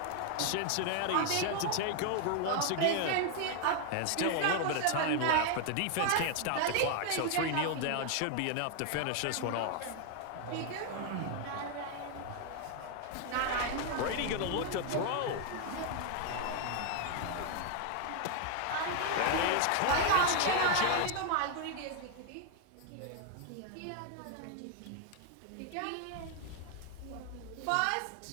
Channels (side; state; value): both; different; correlation 0.00